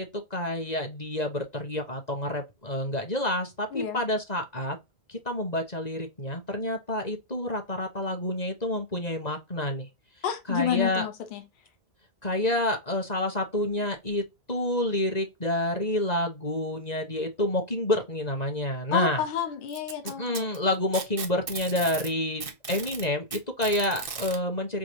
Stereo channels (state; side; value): late; right; 1.6 ms